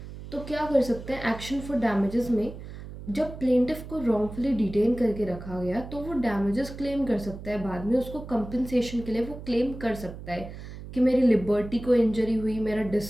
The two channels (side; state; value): right; noise; hum, 12 dB below the sound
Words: तो क्या कर सकते हैं, एक्शन फॉर डैमेजेस में जब प्लेंटिफ को रॉन्गफुली डिटेन करके रखा गया तो वो डैमेजेस क्लेम कर सकता है, बाद में उसको कंपनसेशन के लिए वो क्लेम कर सकता है कि मेरी लिबर्टी को इंजरी हुई, मेरा